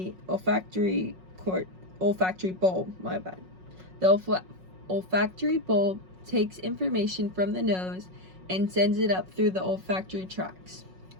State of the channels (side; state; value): left; late; 5.4 ms